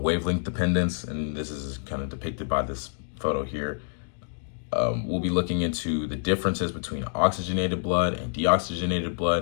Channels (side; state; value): right; silent; digital silence